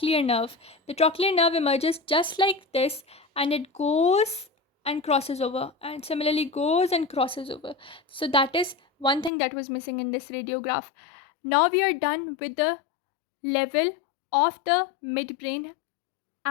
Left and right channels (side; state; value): right; drops out; at 9.3 s